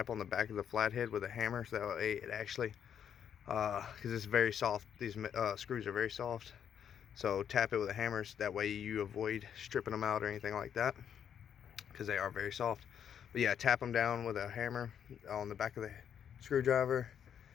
on the back of the flathead with a hammer, so that way it actually, because it's very soft. These screws are very soft. So tap it with a hammer, so that way you avoid stripping them out or anything like that, because they are very soft. But yeah, tap them down with a hammer on the back of the screwdriver,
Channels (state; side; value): quieter; right; 8.6 dB